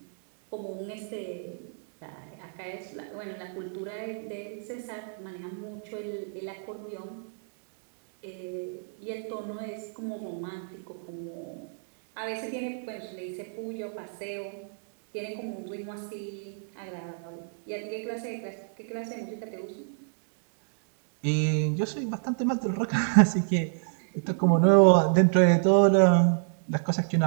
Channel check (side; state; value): left; silent; digital silence